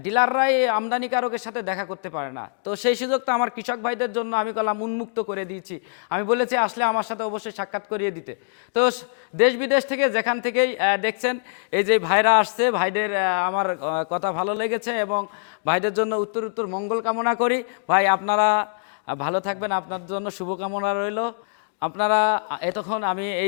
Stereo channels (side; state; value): right; silent; digital silence